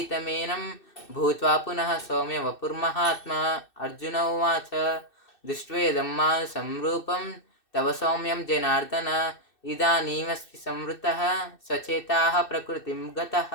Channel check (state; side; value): late; right; 2.6 ms